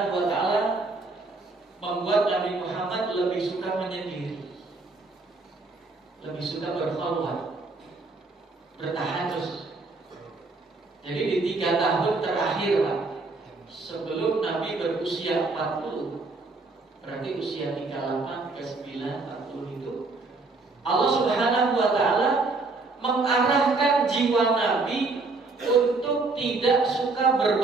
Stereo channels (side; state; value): left; quieter; 3.7 dB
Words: wa taala membuat Nabi Muhammad lebih suka menyendiri. Lebih suka berkhalwat. Bertahajud. Jadi di 3 tahun terakhir Pak, sebelum Nabi berusia 40, berarti usia 38, 39, 40 itu Allah Subhanahu wa taala mengarahkan jiwa Nabi untuk tidak suka